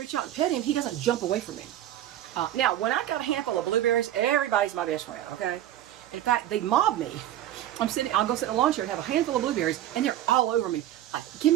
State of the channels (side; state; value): left; quieter; 12.6 dB